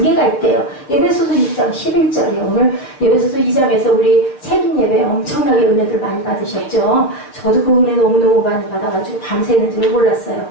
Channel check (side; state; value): right; late; 6.8 ms